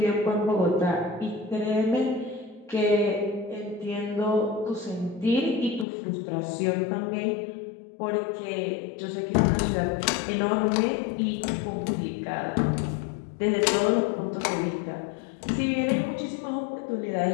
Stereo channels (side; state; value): right; drops out; at 5.9 s